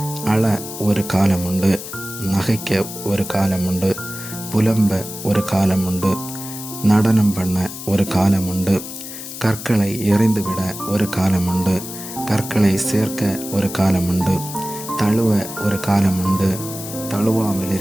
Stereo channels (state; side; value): noise; left; hiss, 10 dB below the sound